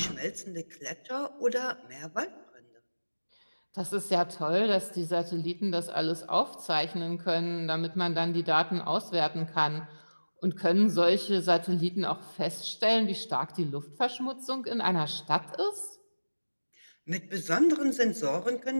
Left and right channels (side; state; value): both; inverted; correlation -1.00